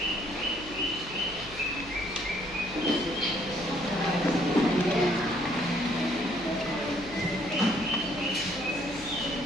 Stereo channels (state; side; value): noise; left; hum, 18 dB below the sound